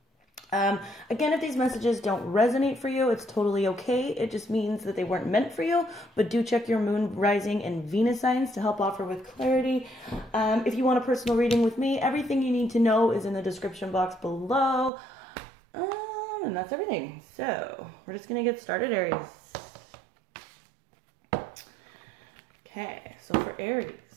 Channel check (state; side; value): drops out; left; at 14.9 s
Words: again, if these messages don't resonate for you, it's totally okay. It just means that they weren't meant for you, but do check your moon, rising, and Venus signs to help offer with clarity. If you want a personal reading with me, everything you need to know is in the description box below. And that's everything. So we're just going to get started, Aries. Okay, so for Aries.